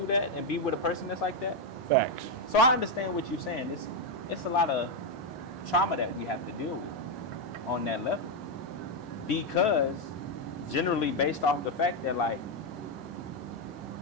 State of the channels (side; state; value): both; normal; correlation 0.03